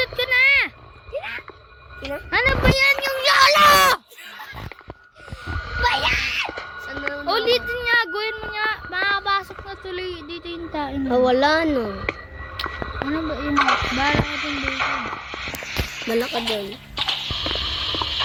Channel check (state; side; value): identical; both; correlation 1.00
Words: ko na. Kina? Ano ba yan yung yolo? Bayan! Saan na? Ulitin nga, gawin mo nga. Makakapasok na tuloy dito yung tayo. Wala no. Ano ba yun? Bala ka dun dito. Malaka doon.